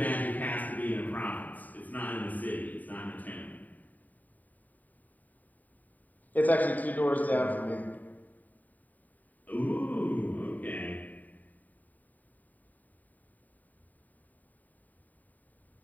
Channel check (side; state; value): right; late; 0.081 ms